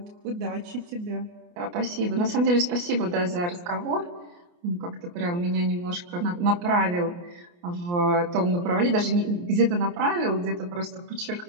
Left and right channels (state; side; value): late; left; 28 ms